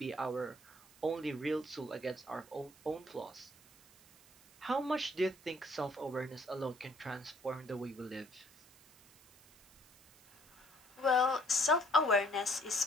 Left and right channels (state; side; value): noise; right; hiss, 26 dB below the sound